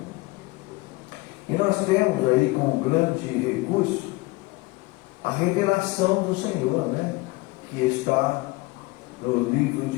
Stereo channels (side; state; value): right; quieter; 22.8 dB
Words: E nós temos aí como grande recurso a revelação do Senhor, né? Que está no livro